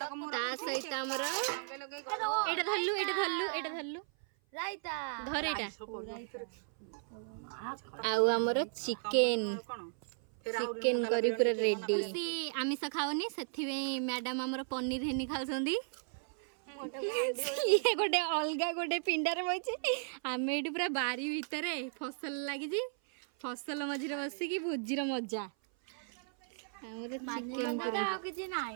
सहित आमर एटा धरलु धर एटा आउ आमर चिकेन चिकेन करी पूरा रेडी सी आमिष खाऊनी से मैडम आमर पनीर हेनी खाऊंगी ये गोटे अलग गोटे पिंडार बचे आम ये पूरा बारी भितर फसल लगी फसल मझे बसिकी भोजीर मजा आमर चिकेन पूरा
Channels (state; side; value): silent; left; 54 dB below the other